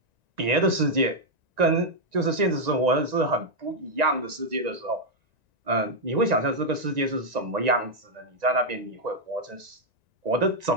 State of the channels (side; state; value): left; late; 1.9 ms